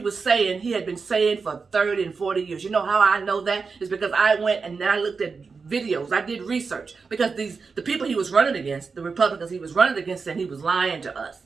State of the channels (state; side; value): quieter; left; 4.9 dB